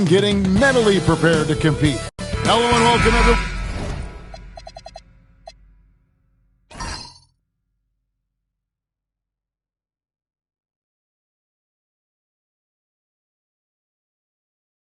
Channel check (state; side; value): identical; both; correlation 1.00